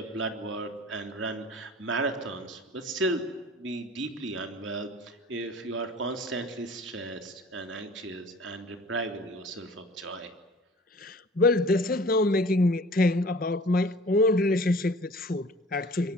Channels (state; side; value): normal; both; correlation 0.46